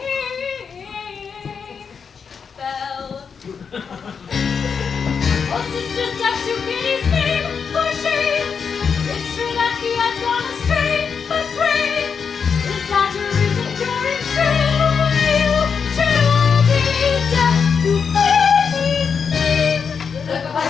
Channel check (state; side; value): quieter; right; 6.2 dB